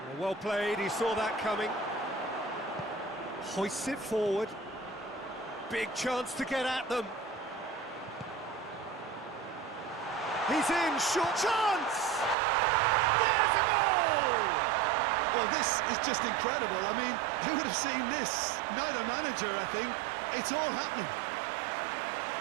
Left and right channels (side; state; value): left; drops out; at 12.4 s